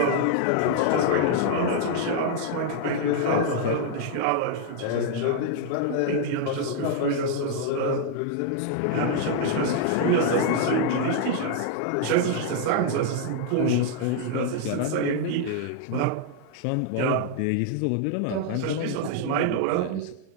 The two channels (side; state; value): both; different; correlation 0.00